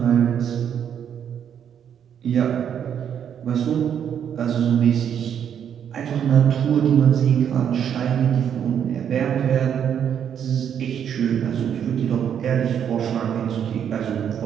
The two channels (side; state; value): left; quieter; 8.7 dB